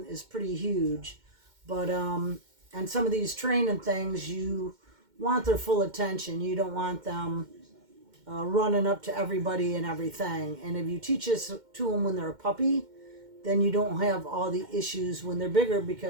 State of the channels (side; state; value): left; late; 2.1 ms